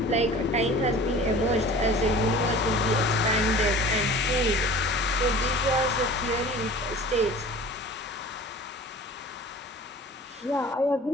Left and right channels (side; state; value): both; normal; correlation 0.42